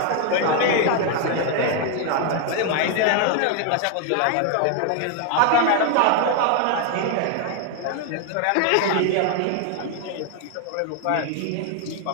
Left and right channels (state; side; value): different; both; correlation 0.01